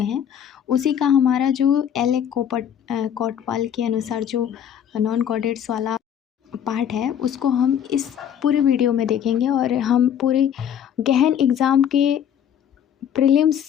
हैं उसी का हमारा जो एल कोटवाल के अनुसार जो नॉन कॉर्डेट्स वाला पार्ट है उसको हम इस पूरे वीडियो में देखेंगे और हम पूरे गहन एग्ज़ाम के प्रीलिम्स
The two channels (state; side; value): quieter; right; 9.1 dB